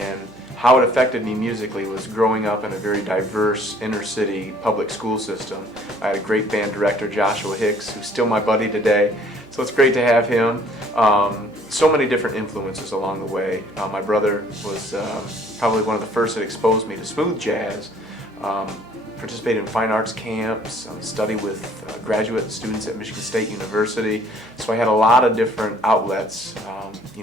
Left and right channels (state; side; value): noise; right; hum, 30 dB below the sound